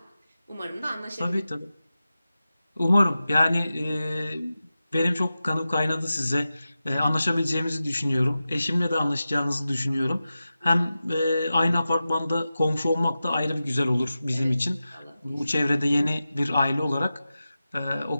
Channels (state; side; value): inverted; both; correlation -0.93